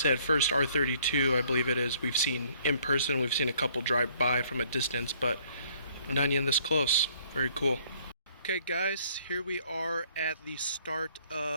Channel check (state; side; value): inverted; both; correlation -0.62